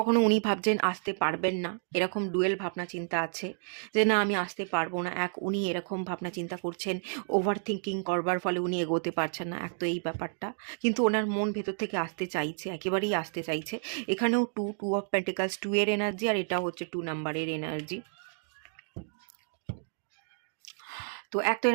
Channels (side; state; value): left; silent; digital silence